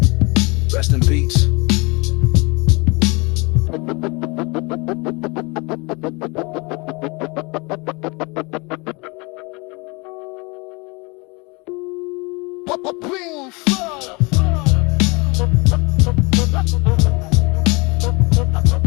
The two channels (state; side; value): quieter; right; 27.8 dB